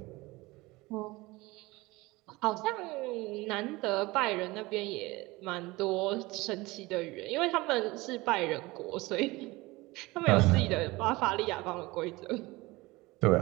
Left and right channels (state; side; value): quieter; left; 21.5 dB